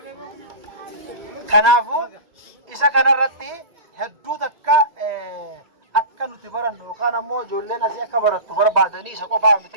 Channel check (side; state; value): left; late; 1.9 ms